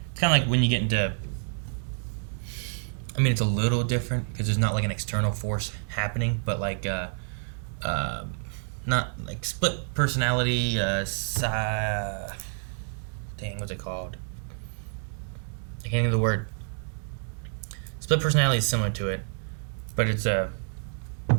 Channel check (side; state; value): left; silent; digital silence